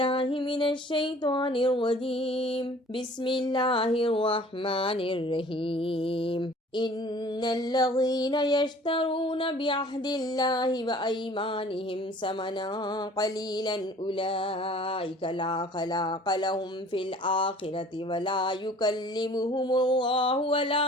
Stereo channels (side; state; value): both; normal; correlation 0.50